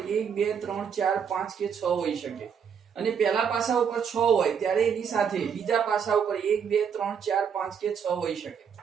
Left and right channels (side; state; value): left; quieter; 7.2 dB